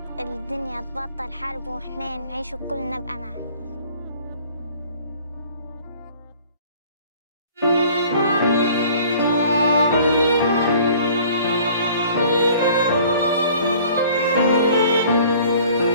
الدنيا تبطل حرب وإحنا نعيش وكلنا بأمان.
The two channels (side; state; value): both; inverted; correlation -0.51